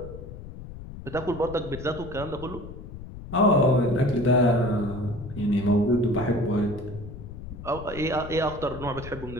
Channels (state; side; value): noise; left; rumble, 12 dB below the sound